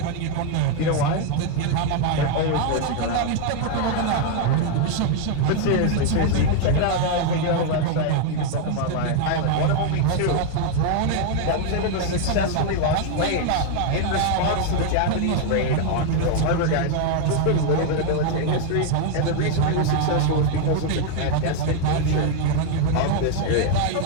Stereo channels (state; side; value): different; both; correlation 0.01